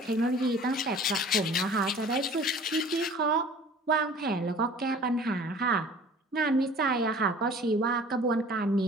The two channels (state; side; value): normal; both; correlation 0.46